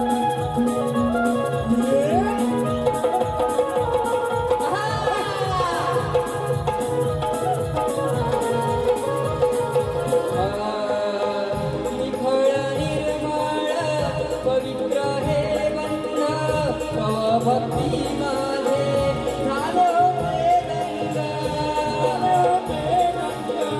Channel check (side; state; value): both; identical; correlation 1.00